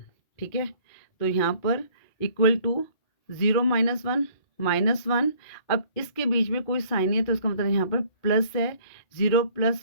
ठीक है। तो यहाँ पर इक्वल टू 0 - 1 -1। अब इसके बीच में कोई साइन नहीं है तो इसका मतलब यहाँ पर प्लस है, 0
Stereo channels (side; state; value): right; late; 2.7 ms